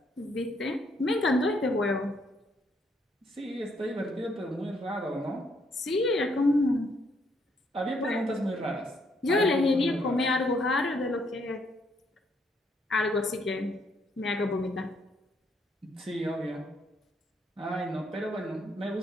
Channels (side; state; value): both; normal; correlation 0.71